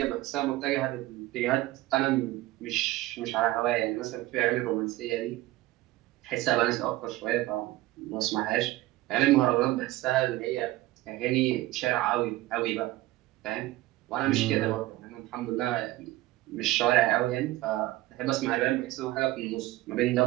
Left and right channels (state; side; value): quieter; left; 17.4 dB